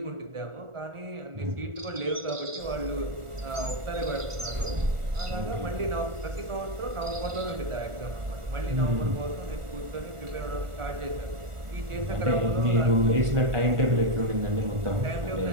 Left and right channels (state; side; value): late; left; 1.4 ms